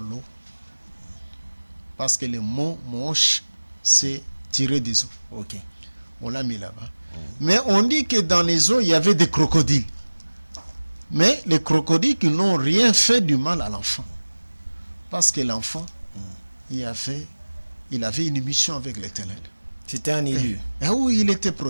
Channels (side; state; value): both; inverted; correlation -1.00